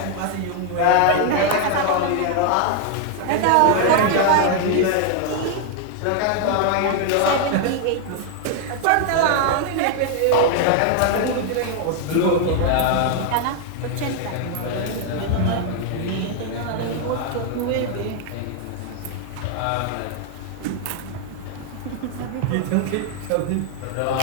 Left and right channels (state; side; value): different; both; correlation 0.00